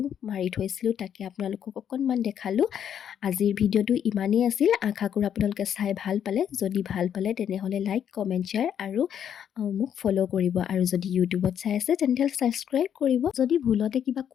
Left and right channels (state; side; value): quieter; right; 9.1 dB